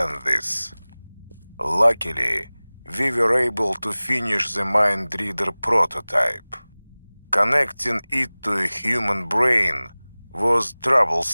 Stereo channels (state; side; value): inverted; both; correlation -1.00